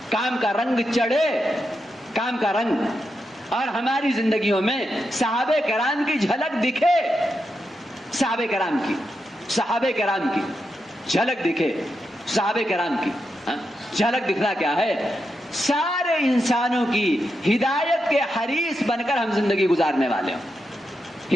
کام کا رنگ چڑھے، کام کا رنگ، اور ہماری زندگیوں میں صحابہ کرام کی جھلک دکھے، صحابہ کرام کی جھلک دکھے، صحابہ کرام کی جھلک دکھنا کیا ہے؟ سارے انسانوں کی ہدایت کے حریص بن کر ہم زندگی گزارنے والے ہوں.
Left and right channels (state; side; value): normal; both; correlation 0.86